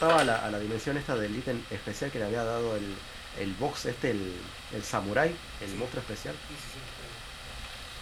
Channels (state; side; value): identical; both; correlation 1.00